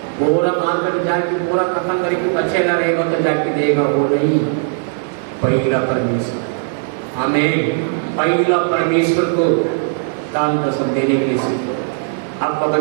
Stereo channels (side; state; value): left; silent; digital silence